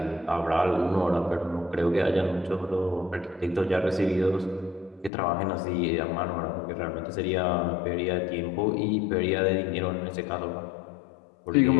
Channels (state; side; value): drops out; right; at 5.1 s